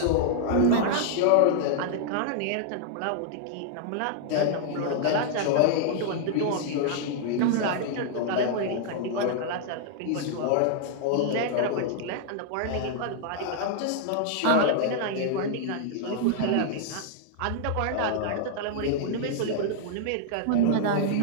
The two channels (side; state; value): both; different; correlation -0.01